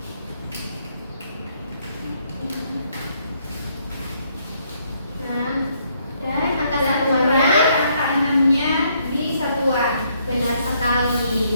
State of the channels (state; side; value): inverted; both; correlation -0.71